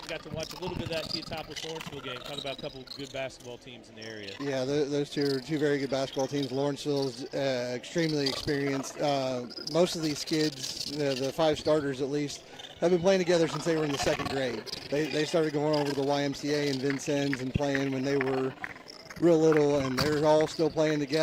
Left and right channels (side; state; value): both; identical; correlation 1.00